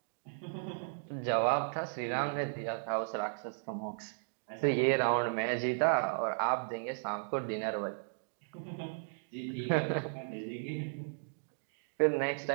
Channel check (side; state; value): left; silent; digital silence